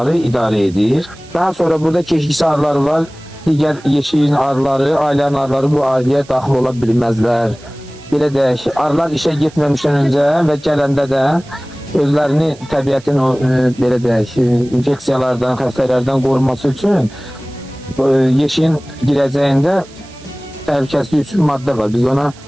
arı idarə edir. Daha sonra burada keşikçi arıları var. Digər yeşiyin arıları, ailənin arıları bu ailəyə daxil ola bilməzlər. Belə deyək, arılar işə getməmişdən öncə və gələndə də özlərini təbiətin o belə deyək, infeksiyalardan, xəstələrdən qorunması üçün yeşiyin girəcəyində təhlükəsizlik üçün maddə var. Biz ona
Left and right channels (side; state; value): right; noise; hiss, 24 dB below the sound